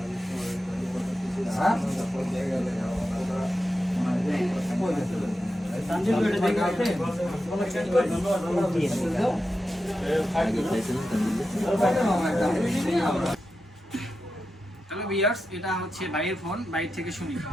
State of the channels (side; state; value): both; normal; correlation 0.90